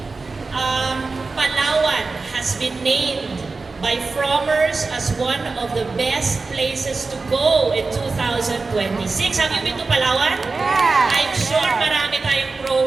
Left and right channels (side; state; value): left; quieter; 4.0 dB